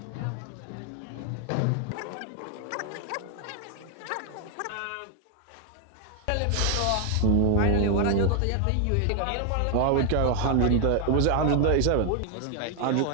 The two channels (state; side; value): different; both; correlation 0.00